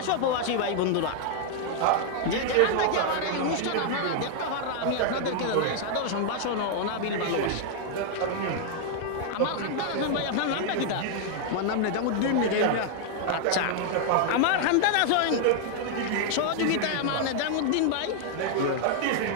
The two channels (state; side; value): different; both; correlation 0.00